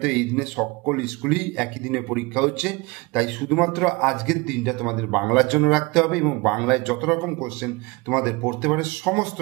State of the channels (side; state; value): left; quieter; 24.9 dB